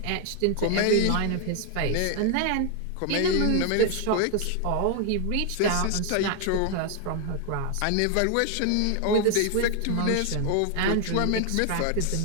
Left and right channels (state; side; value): different; both; correlation 0.00